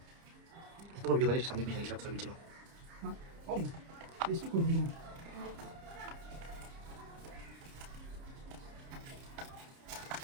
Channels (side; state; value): left; late; 30 ms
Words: Itu video kali sambil bisa hilap sambil coba. Oh, this could be.